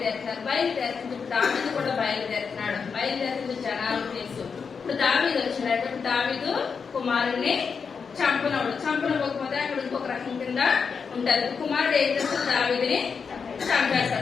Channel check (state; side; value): quieter; right; 5.8 dB